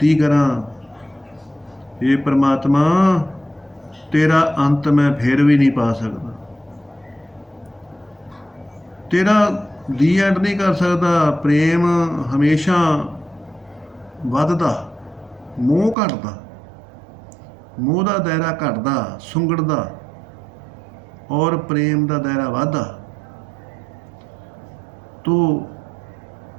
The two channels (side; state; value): left; drops out; at 16.0 s